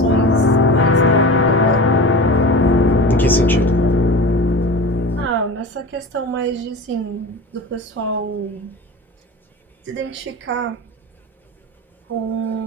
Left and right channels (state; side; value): normal; both; correlation 0.32